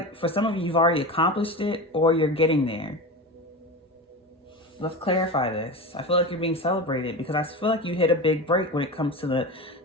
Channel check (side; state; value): both; normal; correlation 0.26